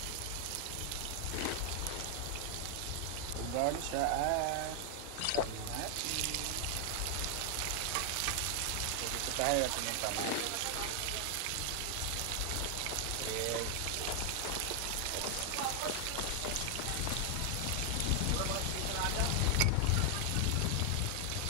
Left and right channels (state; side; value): different; both; correlation 0.00